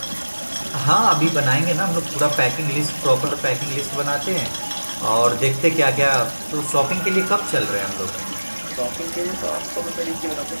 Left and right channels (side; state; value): both; inverted; correlation -1.00